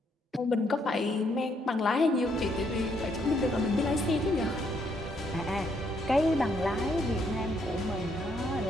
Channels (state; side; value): normal; both; correlation 0.73